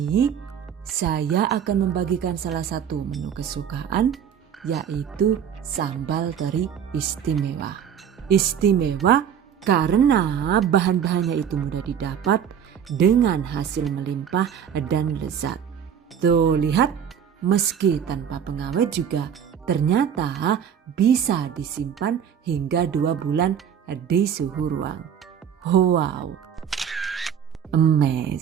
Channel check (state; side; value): quieter; left; 8.4 dB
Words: saya akan membagikan salah satu menu kesukaan, yaitu sambal teri istimewa. Istimewa karena bahan-bahannya itu mudah didapat dengan hasil melimpah dan lezat. Tuh lihat, meski tanpa pengawet juga ternyata bisa disimpan hingga 2 bulan di suhu ruang. Wow,